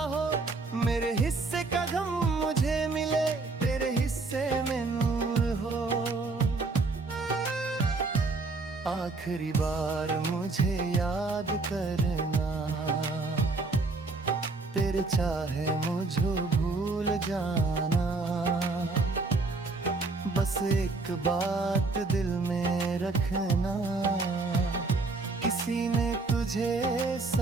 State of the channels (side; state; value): left; quieter; 3.6 dB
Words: हो। मेरे हिस्से का गम मुझे मिले, तेरे हिस्से में नूर हो। आखिरी बार मुझे याद करना, तेरे चाहे मुझे भूल जाना। बस एक बात दिल में रखना, किसी ने तुझे